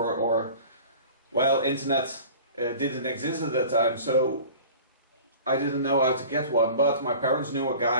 or, well, internet didn't exist at that time, so I didn't know how to get one. But my parents knew a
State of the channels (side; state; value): both; inverted; correlation -0.42